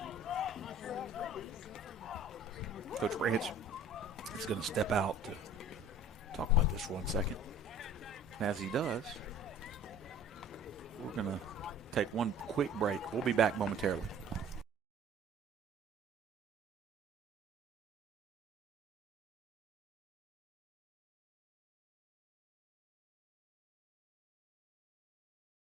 Coach Branch is going to step out to talk about this for 1 second. And as he does, we're going to take one quick break. We'll be back momentarily.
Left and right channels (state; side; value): normal; both; correlation 0.47